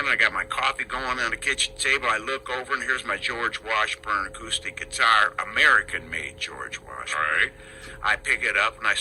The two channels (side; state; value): both; identical; correlation 1.00